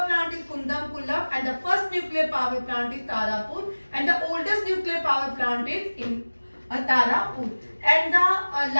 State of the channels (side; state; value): both; inverted; correlation -1.00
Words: plant is Kudankulam and the first nuclear power plant is Tarapur and the oldest nuclear power plant is in Tarapur and the